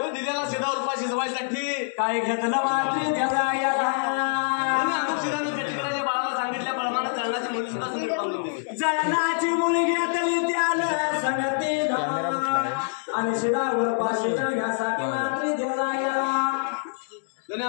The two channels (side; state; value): right; silent; digital silence